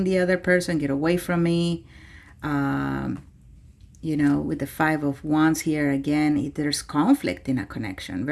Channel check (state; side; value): identical; both; correlation 1.00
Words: the other person, get away from me. With the Five of Wands here, again, there's conflict in a connection,